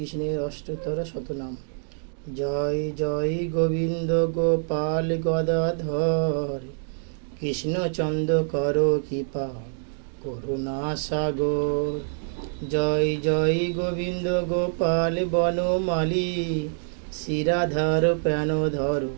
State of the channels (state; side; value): silent; left; digital silence